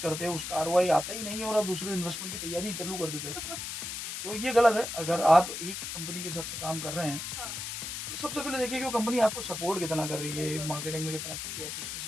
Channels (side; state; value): left; noise; hiss, 5 dB below the sound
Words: करते हो, उसका आरओआई आता ही नहीं है और आप दूसरे इन्वेस्टमेंट की तैयारी चालू कर देते हो। तो ये गलत है। अगर हाँ, आप एक कंपनी के साथ में काम कर रहे हैं, हाँ, तो सबसे पहले देखिए कि वो कंपनी आपको सपोर्ट कितना कर रही है, बिल्कुल, मार्केटिंग में कितना कर रही है, ऑपरेशन में